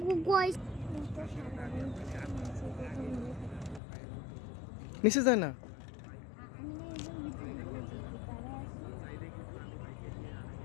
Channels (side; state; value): right; drops out; at 3.8 s